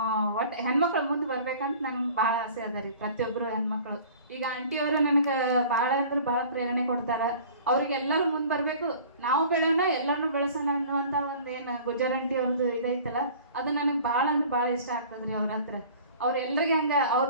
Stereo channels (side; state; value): both; inverted; correlation -0.46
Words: ಒಟ್ಟು ಹೆಣ್ಮಕ್ಳು ಮುಂದೆ ಬರ್ಬೇಕಂತ ನನಗೆ ಭಾಳ ಆಸೆ ಅದ ರೀ. ಪ್ರತಿಯೊಬ್ಬರು ಹೆಣ್ಮಕ್ಳು ಈಗ ಆಂಟಿಯವರು ನನಗೆ ಭಾಳ ಅಂದ್ರೆ ಭಾಳ ಪ್ರೇರಣೆ ಕೊಡ್ತಾರೆ. ಅವ್ರಿಗೆಲ್ಲರೂ ಮುಂದೆ ಬರಬೇಕು, ನಾವು ಬೆಳೆಯೋಣ ಎಲ್ಲರನ್ನೂ ಬೆಳೆಸೋಣ ಅನ್ನುವಂಥ ಒಂದು ಏನು ಗುಜ್ಜರ್ ಆಂಟಿ ಅವ್ರದ್ದು ಇದೈತಲ್ಲ ಅದು ನನಗೆ ಭಾಳ ಅಂದ್ರೆ ಭಾಳ ಇಷ್ಟ ಆಗ್ತದೆ ರೀ. ಅವ್ರ ಹತ್ರ ಅವ್ರೆಲ್ಲರಿಗೆ ಹಂಗೆ ಅವ್ರು